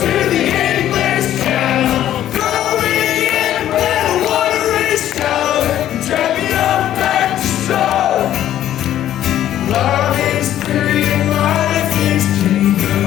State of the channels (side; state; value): right; quieter; 12.0 dB